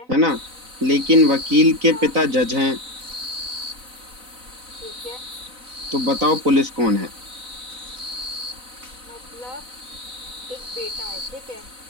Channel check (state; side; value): late; left; 4.0 ms